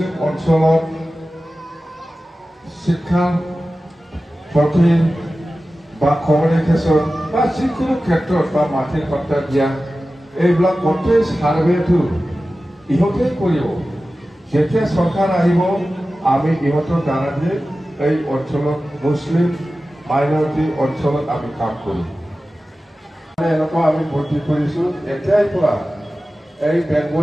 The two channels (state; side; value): normal; both; correlation 0.95